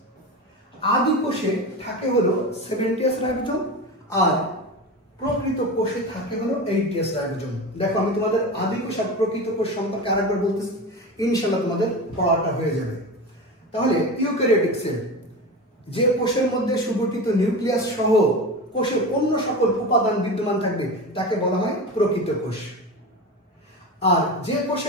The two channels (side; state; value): both; normal; correlation 0.26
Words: আদিকোষে থাকে হলো 7ts রাইবোজোম আর প্রকৃত কোষে থাকে হলো 8ts রাইবোজোম। দেখো আমি তোমাদের আদিকোষ আর প্রকৃত কোষ সম্পর্কে আরেকবার বলতেছি, ইনশাআল্লাহ তোমাদের পড়াটা হয়ে যাবে। তাহলে ইউক্যারিওটিক সেল, যে কোষের মধ্যে সুগঠিত নিউক্লিয়াস সহ কোষের অন্য সকল উপাদান বিদ্যমান থাকবে তাকে বলা হয় প্রকৃত কোষ। আর যে